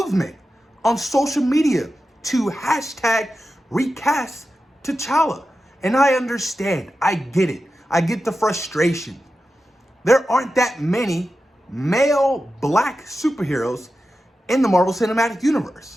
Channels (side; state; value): both; normal; correlation 0.91